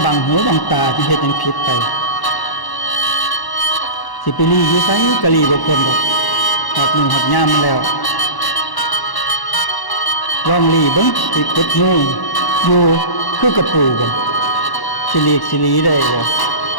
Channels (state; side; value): late; right; 1.1 ms